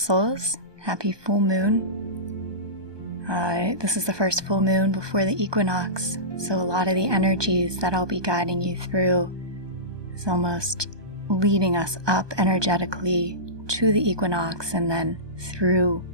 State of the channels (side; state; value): left; late; 1.2 ms